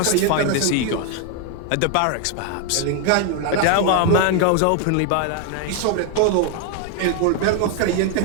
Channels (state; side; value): different; both; correlation 0.01